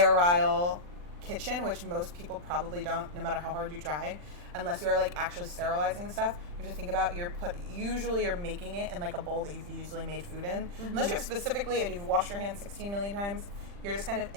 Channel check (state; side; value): late; left; 40 ms